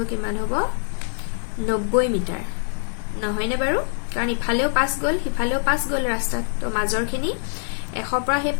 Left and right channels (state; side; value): silent; right; digital silence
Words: কিমান হ'ব 90 মিটাৰ নহয়নে বাৰু কাৰণ ইফালেও 5 গল হিফালেও 5 গল ৰাস্তাত তো মাজৰখিনি 100 পৰা হে